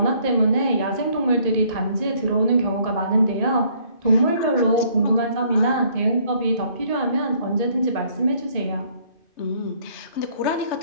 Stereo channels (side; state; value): right; late; 2.5 ms